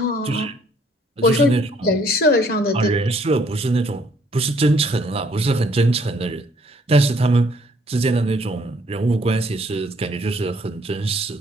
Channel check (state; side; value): normal; both; correlation 0.64